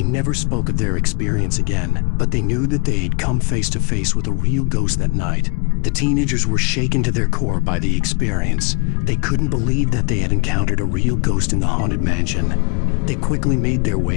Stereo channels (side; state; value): right; quieter; 33.7 dB